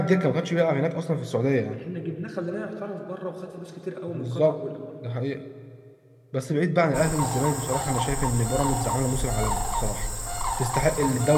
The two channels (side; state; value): both; identical; correlation 1.00